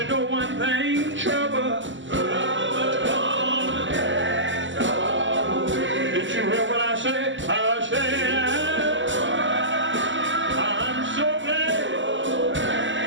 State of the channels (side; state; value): left; late; 0.55 ms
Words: know one thing, trouble. Did you hear what I said? I said, I'm so glad.